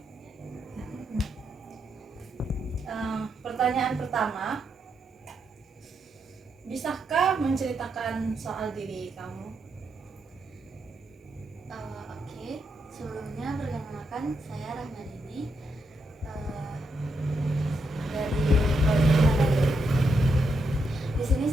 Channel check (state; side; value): normal; both; correlation 0.81